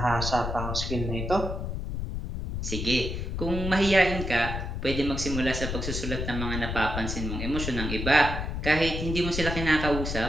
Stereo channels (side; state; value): left; noise; rumble, 4 dB below the sound